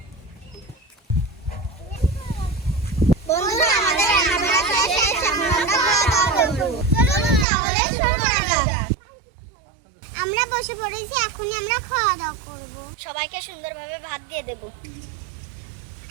বন্ধুরা, আমাদের রান্না বান্না শেষ, এখন আমরা খাওয়া দাওয়া করব। চলুন তাহলে শুরু করা যাক। আমরা বসে পড়েছি, এখনই আমরা খাওয়া দাওয়া করব। সবাইকে সুন্দরভাবে ভাত দিয়ে দেব।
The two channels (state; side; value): drops out; left; at 7.5 s